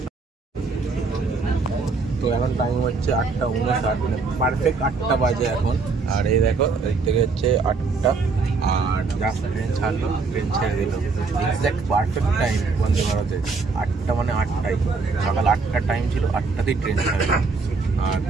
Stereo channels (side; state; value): left; quieter; 4.3 dB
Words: তো এখন টাইম হচ্ছে 8:59, মানে পারফেক্ট 8টা বাজে এখন। আর এই দেখো এদিক থেকে হচ্ছে 8টা, আর জাস্ট ট্রেন ছাড়লো, ট্রেন ছেড়ে দিল। এক্স্যাক্ট পারফেক্ট টাইম বন্দে ভারতের 8টা, মানে 8টাই। সকাল 8টার টাইম ছিল, 8টাতেই ট্রেন ছাড়লো। আর